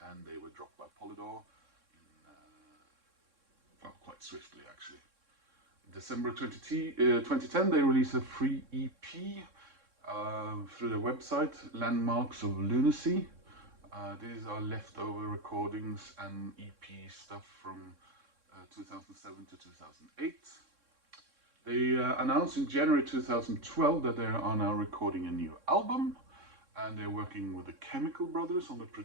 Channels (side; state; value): left; late; 3.6 ms